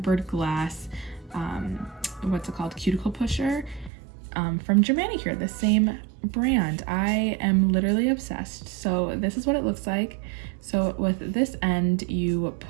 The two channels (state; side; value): drops out; left; at 3.9 s